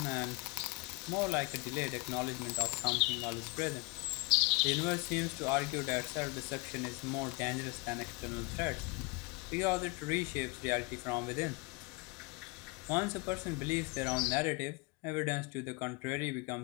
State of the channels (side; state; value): right; quieter; 24.8 dB